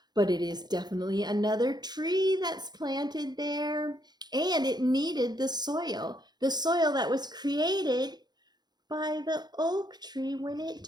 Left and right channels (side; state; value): left; late; 0.20 ms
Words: but it is definitely another tree that's planted there, and it needed the soil that was created by the oak tree when it